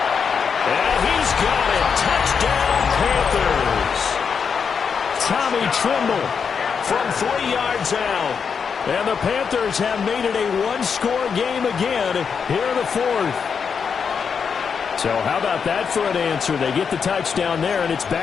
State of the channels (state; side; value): quieter; right; 6.3 dB